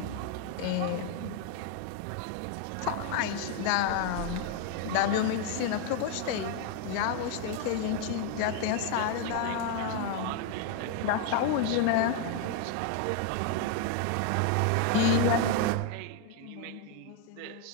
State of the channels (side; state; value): both; different; correlation 0.01